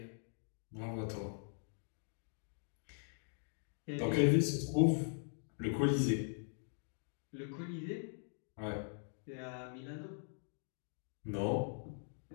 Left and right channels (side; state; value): right; silent; digital silence